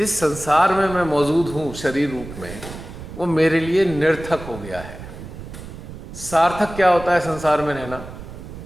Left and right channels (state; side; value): noise; right; rumble, 12 dB below the sound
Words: संसार में मैं मौजूद हूँ शरीर रूप में, वो मेरे लिए निरर्थक हो गया है। सार्थक क्या होता है संसार में रहना?